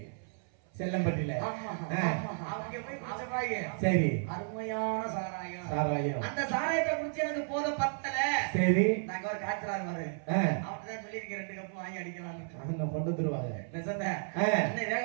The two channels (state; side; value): silent; left; 56 dB below the other